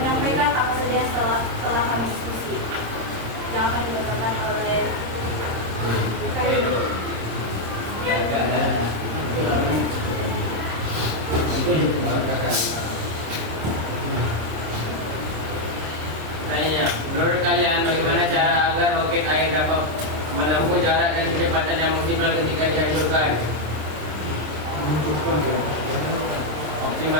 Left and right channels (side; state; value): left; late; 26 ms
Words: apa saja yang telah kami diskusi yang akan dibacakan oleh Tanya, menurut kalian bagaimana cara agar roket air dapat menempuh jarak dan kecepatan yang maksimal ketika dihancurkan?